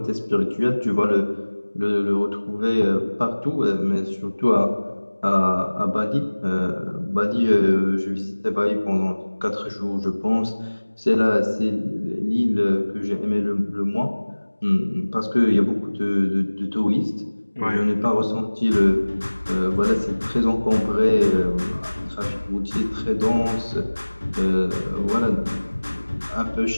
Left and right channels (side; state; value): both; inverted; correlation -1.00